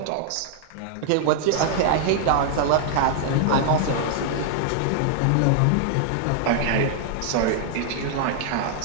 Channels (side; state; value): both; different; correlation 0.00